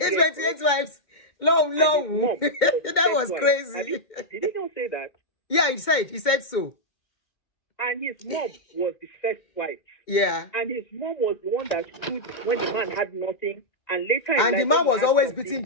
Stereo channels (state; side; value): late; right; 2.1 ms